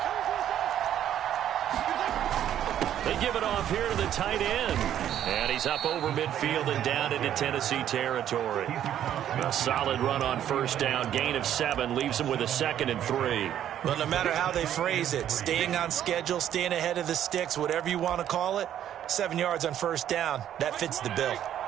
They give it off here to the tight end. And he's up over midfield and down into Tennessee territory. A solid run on first down. Gain of 7 leaves him with a 2nd and 3. Well, no matter how they phrase it, staying on schedule, staying ahead of the sticks, whatever you want to call it, 7 yards on first down, that fits the bill.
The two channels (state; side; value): quieter; left; 10.8 dB